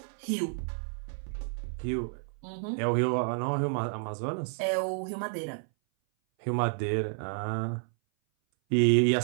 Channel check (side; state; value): left; silent; 58 dB below the other